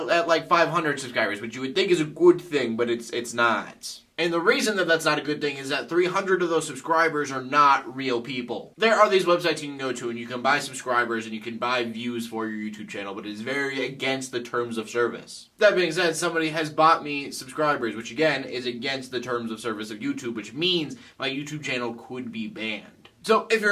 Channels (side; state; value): both; identical; correlation 1.00